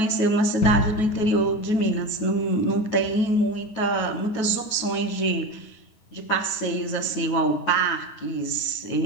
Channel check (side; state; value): right; late; 9.2 ms